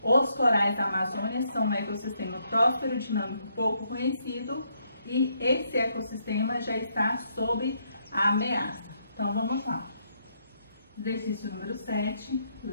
os corais da Amazônia são um ecossistema próspero, dinâmico, pouco conhecido e esse ecossistema já está sob a ameaça. Então, vamos lá. Exercício número 7,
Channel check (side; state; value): both; inverted; correlation -0.75